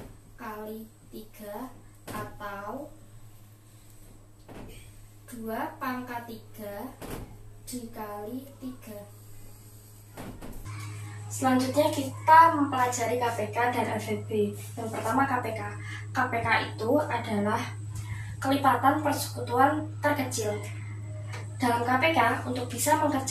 kali 3, atau 2 pangkat 3 dikali 3. Selanjutnya kita mempelajari KPK dan FEB. Yang pertama KPK. KPK itu adalah kelipatan persekutuan terkecil. Dalam KPK, untuk bisa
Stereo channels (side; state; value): both; identical; correlation 1.00